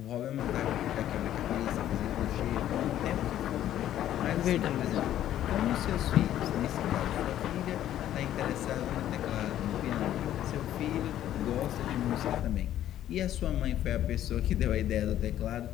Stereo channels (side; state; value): right; quieter; 12.0 dB